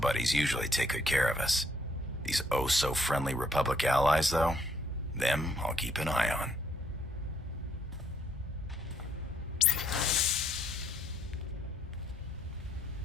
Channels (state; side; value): normal; both; correlation 0.68